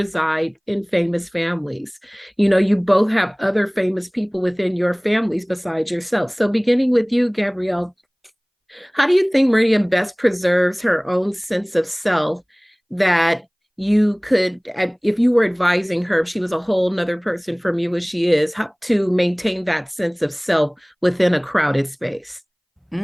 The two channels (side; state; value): both; identical; correlation 1.00